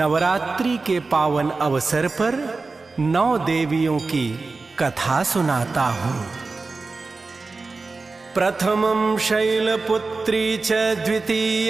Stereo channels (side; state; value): left; quieter; 3.9 dB